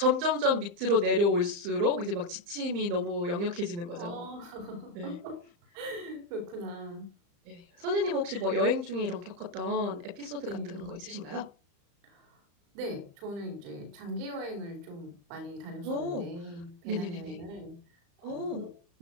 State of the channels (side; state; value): left; late; 35 ms